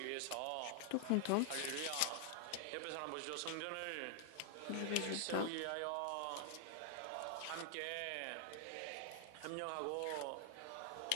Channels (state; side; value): different; both; correlation 0.00